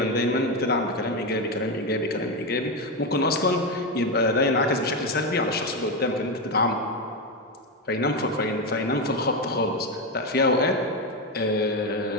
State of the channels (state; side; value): normal; both; correlation 0.11